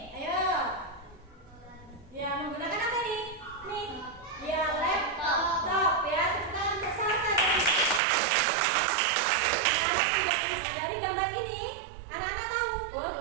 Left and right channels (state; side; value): drops out; left; at 8.0 s